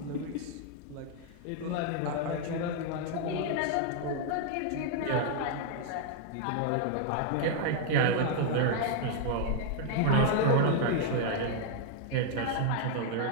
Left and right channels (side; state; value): both; different; correlation 0.00